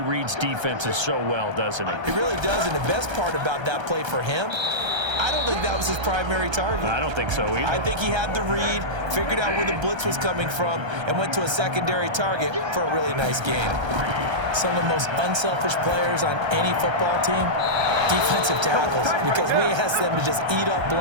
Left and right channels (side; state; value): left; late; 1.3 ms